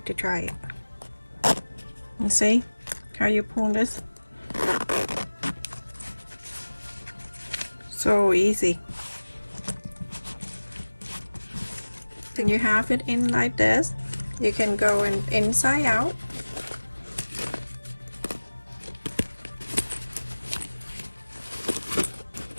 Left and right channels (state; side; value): inverted; both; correlation -1.00